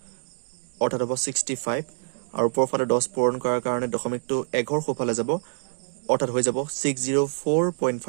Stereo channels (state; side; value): silent; left; 61 dB below the other